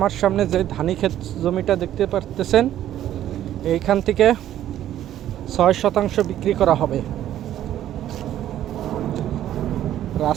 সামনে যে ধানি ক্ষেত জমিটা দেখতে পারতেছেন, এইখান থেকে 6% বিক্রি করা হবে।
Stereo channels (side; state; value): left; quieter; 12.0 dB